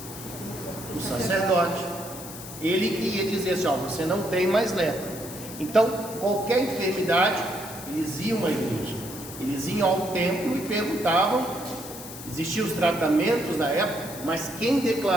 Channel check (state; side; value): noise; left; hiss, 13 dB below the sound